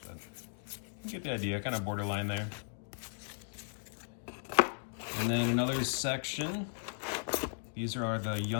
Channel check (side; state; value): right; silent; digital silence